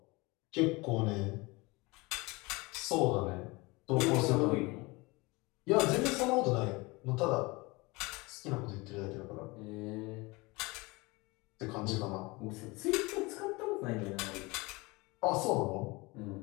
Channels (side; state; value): right; quieter; 24.4 dB